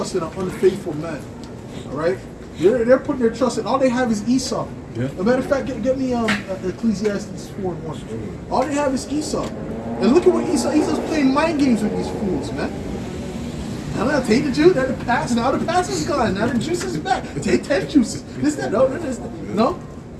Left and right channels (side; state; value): both; identical; correlation 1.00